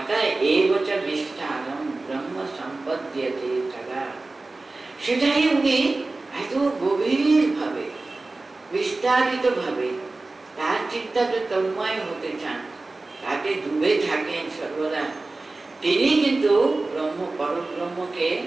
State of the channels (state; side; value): quieter; left; 3.3 dB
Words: এবচ বিস্তারম ব্রহ্ম সম্পদ্যতে তদা, সেটাই উনি এত গভীর ভাবে বিস্তারিত ভাবে তার চিন্তাকে তন্ময় হতে চান, তাকে ডুবে থাকেন সর্বদা। তিনি কিন্তু পরব্রহ্মকে